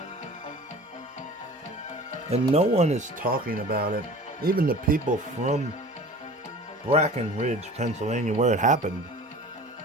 and no one is talking about it. Even the people from Breckenridge, Pennsylvania, where it happened.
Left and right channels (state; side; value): normal; both; correlation 0.41